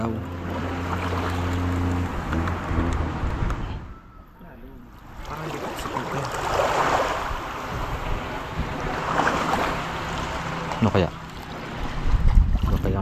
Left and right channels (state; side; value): identical; both; correlation 1.00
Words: Parang di ba sa pagka. Ano kaya? Ano kaya